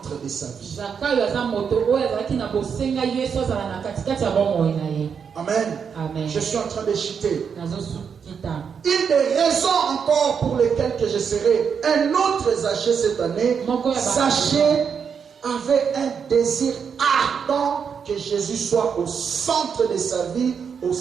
de sa vie. Amen. Je suis en train de chuter. Une des raisons encore pour lesquelles que je serai un autre Zaché cette année, Zaché avait un désir ardent que Jésus soit au centre de sa vie, au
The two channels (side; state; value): left; quieter; 6.7 dB